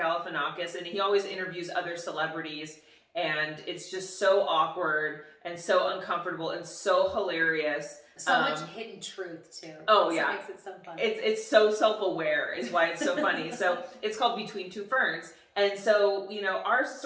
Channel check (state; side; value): identical; both; correlation 1.00